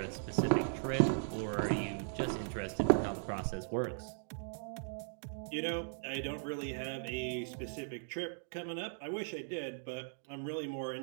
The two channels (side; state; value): left; silent; digital silence